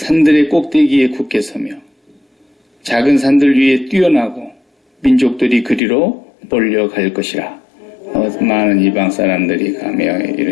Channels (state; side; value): drops out; right; at 5.8 s